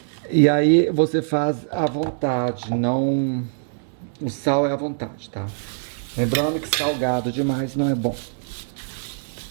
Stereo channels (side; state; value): left; silent; digital silence